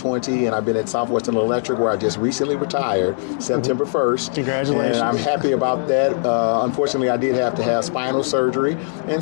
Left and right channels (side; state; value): right; silent; digital silence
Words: and I've been at Southwestern Electric where I just recently retired, September 1st. Congratulations. And I'm happy about that. Unfortunately, I did have to have spinal surgery, and